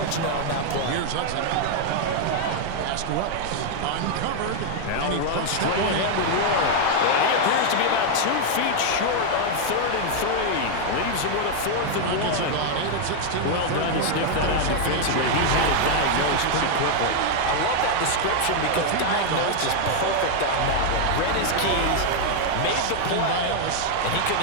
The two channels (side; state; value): both; different; correlation 0.00